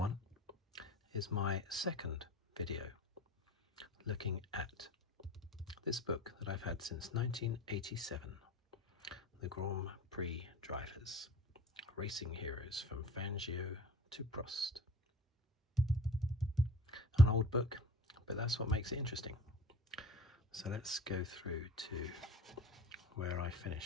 is my second video looking at this book that I've had since 1987, the Grand Prix Drivers, Racing Heroes from Fangio to Prost. An old book, but that's what makes it interesting. So let's go through to where I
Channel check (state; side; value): normal; both; correlation 0.42